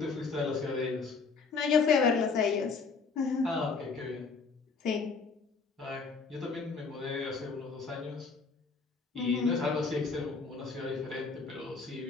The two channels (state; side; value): quieter; right; 4.8 dB